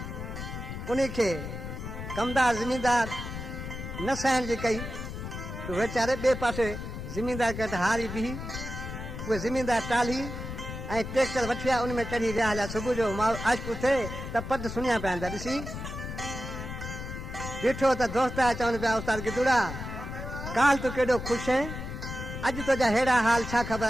उन्हीं खे कमदार ज़मींदार न सहण जी कई तो वीचारे ॿिए पासे ज़मींदार खे हारी बिही उहे ज़मींदार टाली ऐं ट्रैक्टर वठी आया उन में चढ़ी विया हलिया सुबुह जो आशिक़ु थिए त पद सुञा पिया था ॾिसी ॾिठो त दोस्त आया चवनि पिया उस्ताद गिदुड़ा काल तूं केॾो ख़ुशि आहे अॼु तुंहिंजा अहिड़ा हाल छा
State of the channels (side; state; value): left; noise; rumble, 7 dB below the sound